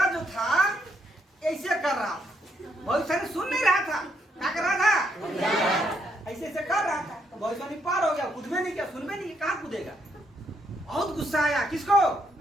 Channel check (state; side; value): normal; both; correlation 0.74